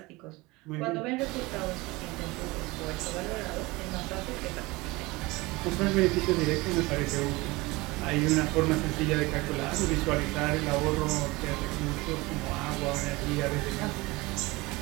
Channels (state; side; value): quieter; left; 22.5 dB